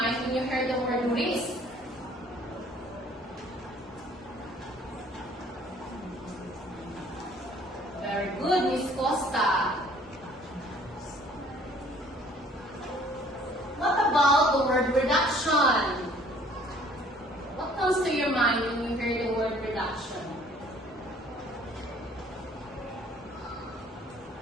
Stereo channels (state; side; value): normal; both; correlation 0.56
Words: when you hear the word risk? Very good, Miss Costa. What about the word reduction? What comes to your mind when you hear the word reduction?